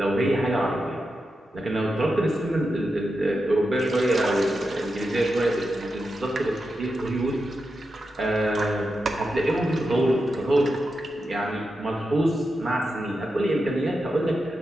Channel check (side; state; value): both; normal; correlation 0.88